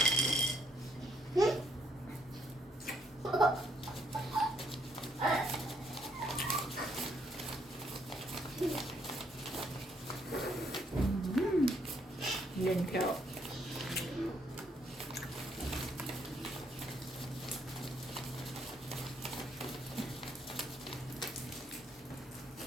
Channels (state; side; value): normal; both; correlation 0.71